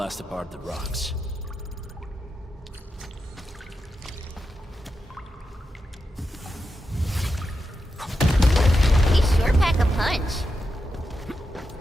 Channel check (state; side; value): normal; both; correlation 0.88